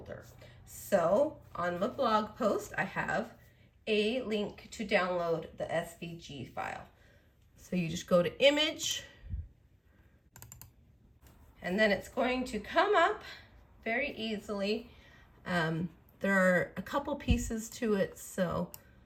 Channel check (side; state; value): both; identical; correlation 1.00